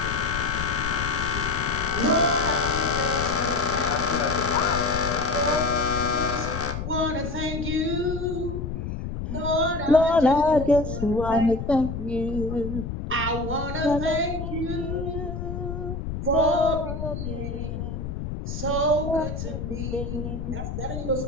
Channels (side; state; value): left; noise; rumble, 5 dB below the sound